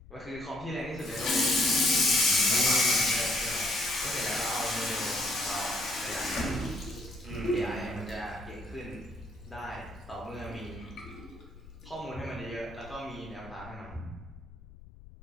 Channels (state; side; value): noise; left; rumble, 19 dB below the sound